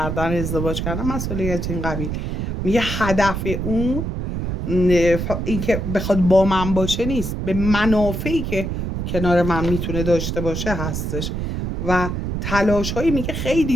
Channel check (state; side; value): noise; right; rumble, 3 dB below the sound